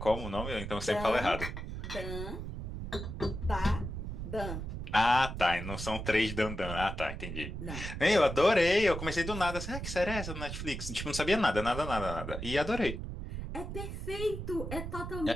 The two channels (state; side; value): noise; right; rumble, 6 dB below the sound